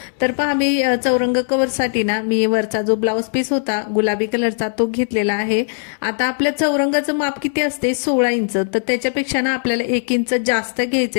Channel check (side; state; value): right; silent; 67 dB below the other